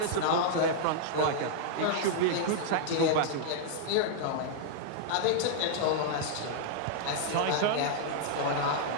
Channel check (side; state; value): both; different; correlation -0.01